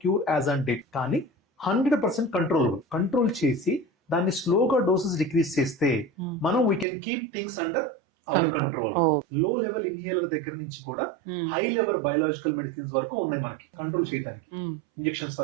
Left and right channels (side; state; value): left; drops out; at 6.9 s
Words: cure as on date. కానీ 100% కంట్రోలబుల్. కంట్రోల్ చేసి దాన్ని స్లోగా డోసెస్ డిక్రీజ్ చేస్తే మనం we can keep things under our control. లో లెవెల్ ఇన్హేలర్ దగ్గర నుంచి కూడా హై లెవెల్ బయోలాజికల్ మెడిసిన్స్ వరకు ఉన్నాయి మనకి కంట్రోల్ చేయడానికి. ఇంజెక్షన్స్